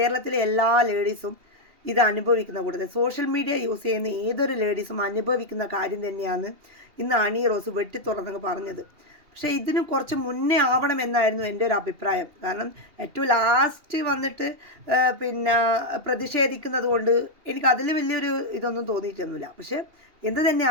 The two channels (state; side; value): late; left; 2.8 ms